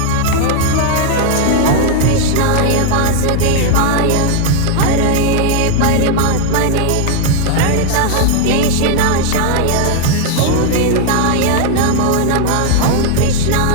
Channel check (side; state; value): both; different; correlation 0.00